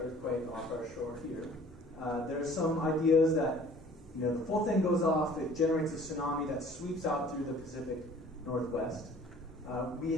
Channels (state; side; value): normal; both; correlation 0.51